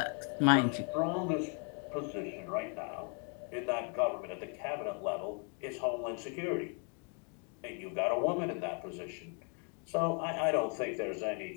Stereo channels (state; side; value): quieter; right; 39.5 dB